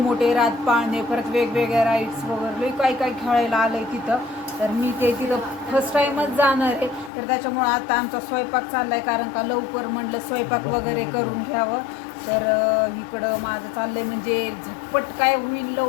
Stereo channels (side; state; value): right; drops out; at 7.1 s